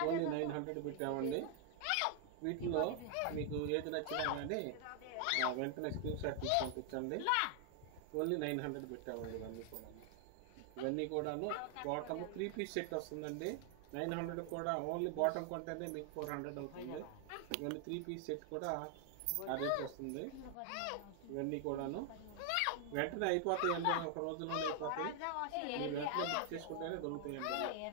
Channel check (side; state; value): both; different; correlation 0.00